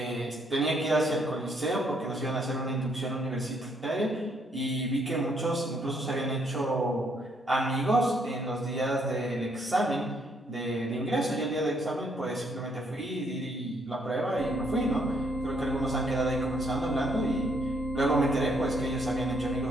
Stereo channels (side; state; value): both; normal; correlation 0.70